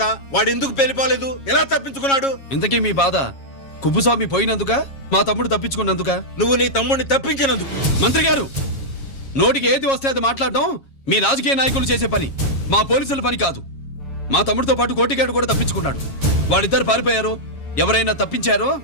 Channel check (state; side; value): late; right; 7.3 ms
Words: వాడు ఎందుకు పెళ్లిపోలేదు? ఎలా తప్పించుకున్నాడు? ఇంతకీ మీ బాధ కుప్పుస్వామి పోయినందుక, మా తమ్ముడు తప్పించుకున్నందుక? నువ్వు నీ తమ్ముడిని తప్పించినందుకు. మంత్రి గారు, నోటికి ఏది వస్తే అది మాట్లాడడం మీ రాజకీయ నాయకులు చేసే పని, మా పోలీసుల పని కాదు. మా తమ్ముడితో పాటు కోటిగాడు కూడా తప్పించుకున్నాడు. వాళ్ళిద్దరు పారిపోయారు. ఎవరైనా తప్పించారో